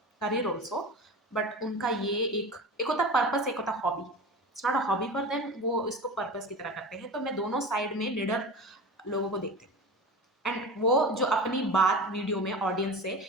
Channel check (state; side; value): normal; both; correlation 0.31